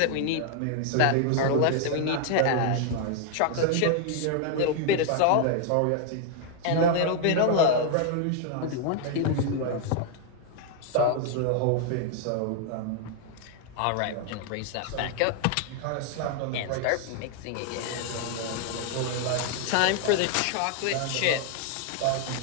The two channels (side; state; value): both; different; correlation 0.00